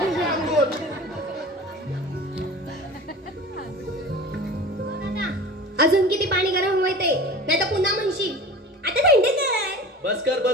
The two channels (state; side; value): normal; both; correlation 0.37